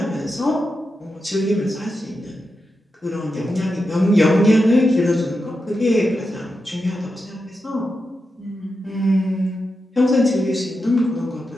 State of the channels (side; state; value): both; normal; correlation 0.88